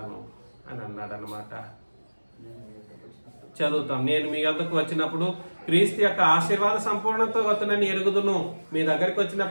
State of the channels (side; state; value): both; inverted; correlation -1.00